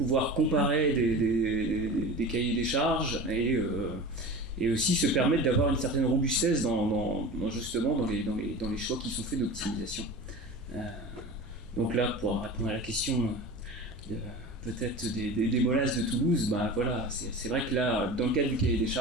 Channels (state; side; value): normal; both; correlation 0.33